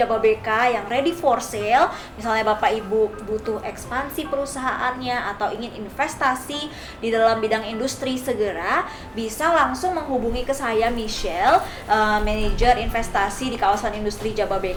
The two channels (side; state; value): both; identical; correlation 1.00